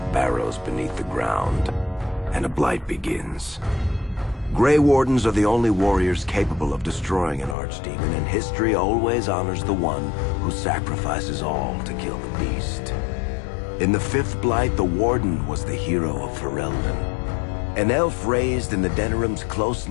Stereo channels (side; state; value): right; drops out; at 7.6 s